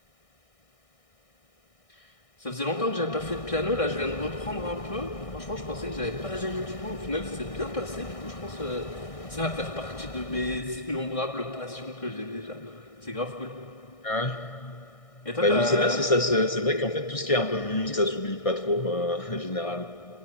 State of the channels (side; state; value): right; late; 1.6 ms